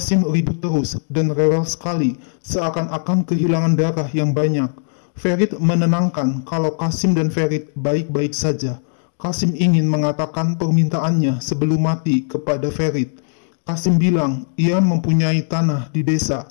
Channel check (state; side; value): silent; right; digital silence